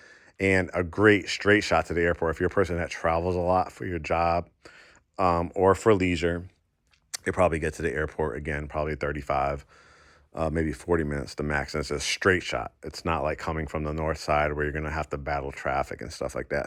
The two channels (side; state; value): both; identical; correlation 1.00